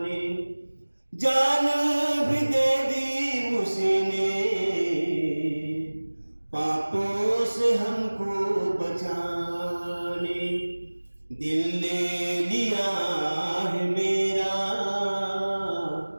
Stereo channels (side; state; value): both; inverted; correlation -1.00